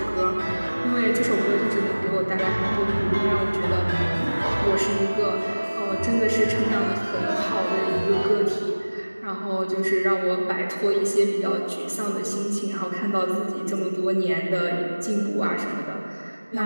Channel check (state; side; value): inverted; both; correlation -1.00